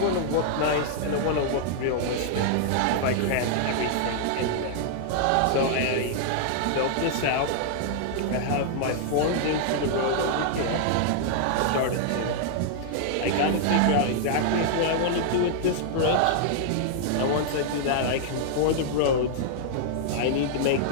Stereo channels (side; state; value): both; different; correlation -0.01